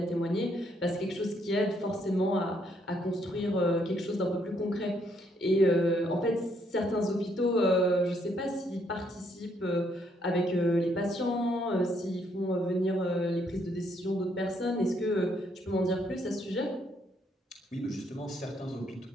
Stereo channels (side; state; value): both; normal; correlation 0.71